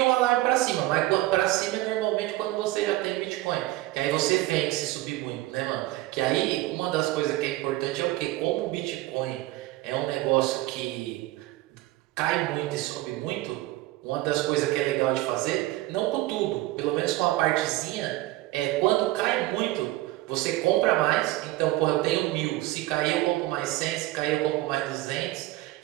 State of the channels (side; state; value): left; quieter; 17.7 dB